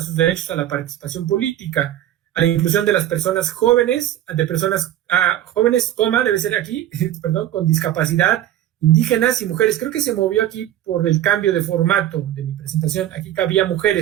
sus derechos a la participación política, a la inclusión de las personas jóvenes, de personas jóvenes, debe ser aquí, perdón, con discapacidad, indígenas y mujeres. Creo que se movió aquí por el cambio de formato de mi presentación. Aquí cabía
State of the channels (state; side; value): quieter; left; 12.4 dB